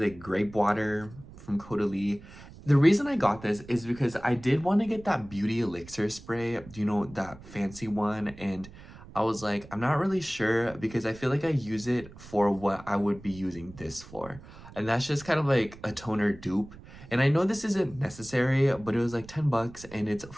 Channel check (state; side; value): noise; right; rumble, 18 dB below the sound